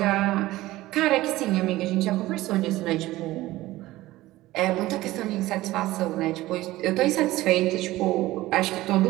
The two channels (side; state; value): left; quieter; 17.2 dB